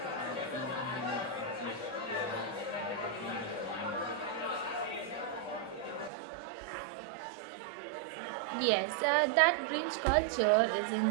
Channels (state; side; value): drops out; left; at 6.1 s